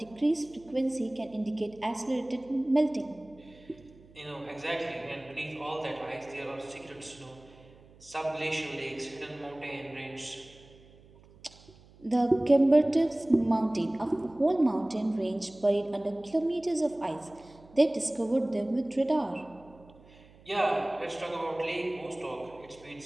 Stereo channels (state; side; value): noise; right; hum, 25 dB below the sound